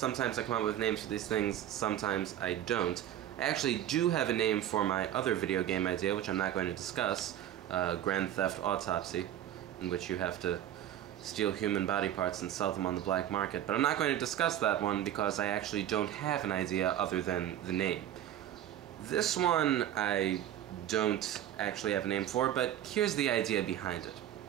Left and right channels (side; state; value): left; quieter; 11.6 dB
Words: I come up with names for these things, sometimes I don't. I actually do have a name for my other video game idea, which I'm not going to discuss, Grand Theft Autopsy, in which you have to steal human body parts and sell them on the black market. But I'm not going to discuss that one because I actually don't have an idea other than the name. This one I don't actually have a name for, but here's the idea behind it.